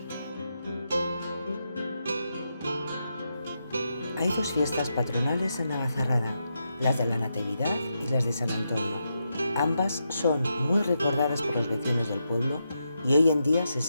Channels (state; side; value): inverted; both; correlation -0.85